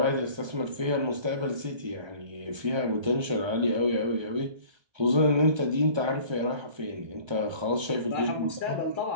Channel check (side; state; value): left; late; 1.3 ms